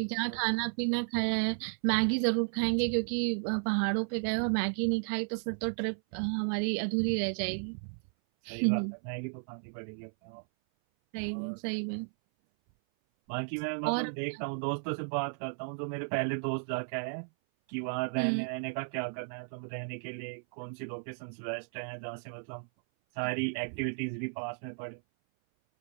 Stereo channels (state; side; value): silent; left; 55 dB below the other